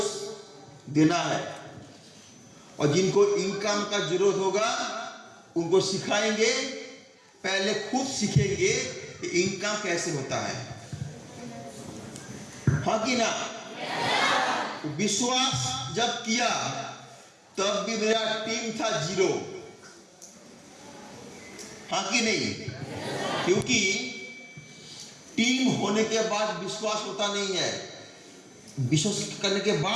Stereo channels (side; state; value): both; identical; correlation 1.00